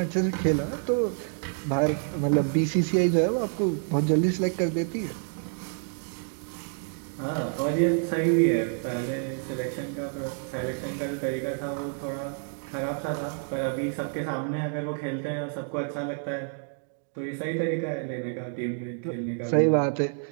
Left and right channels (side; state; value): left; silent; 59 dB below the other